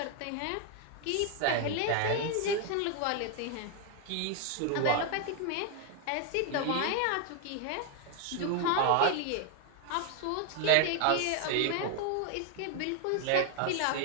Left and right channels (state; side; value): different; both; correlation 0.00